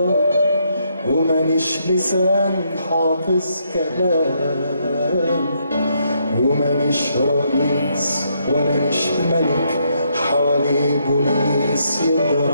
ومانيش لسان حافظ كلام، ومانيش رئيس ولا نش ملك حواليه بوليس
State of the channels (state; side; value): inverted; both; correlation -0.75